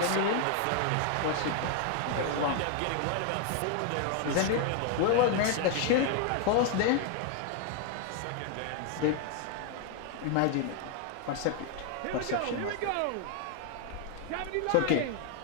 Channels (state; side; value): different; both; correlation 0.00